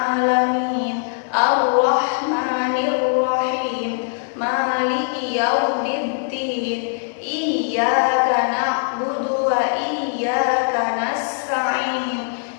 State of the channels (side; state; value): right; silent; digital silence